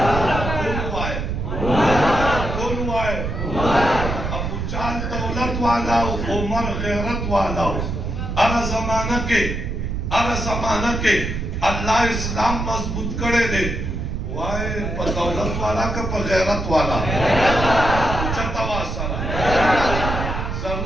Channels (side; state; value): right; noise; rumble, 3 dB below the sound